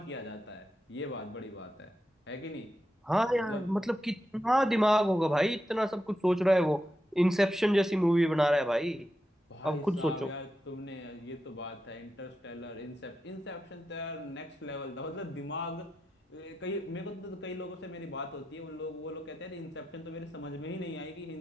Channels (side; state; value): both; normal; correlation 0.88